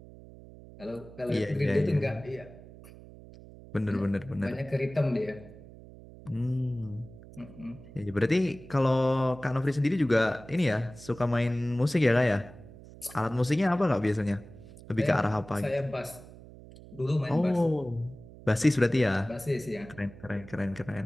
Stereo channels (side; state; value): right; noise; hum, 18 dB below the sound